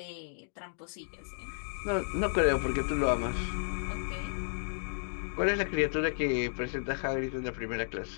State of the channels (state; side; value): silent; right; digital silence